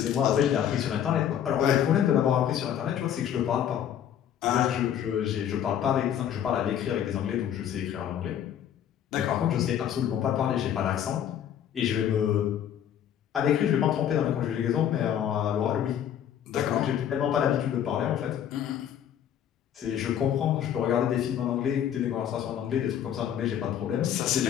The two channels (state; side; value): quieter; right; 9.8 dB